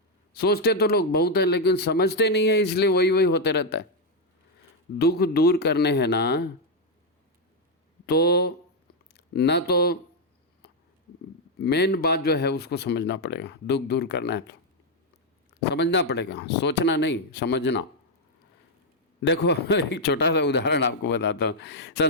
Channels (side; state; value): both; normal; correlation 0.01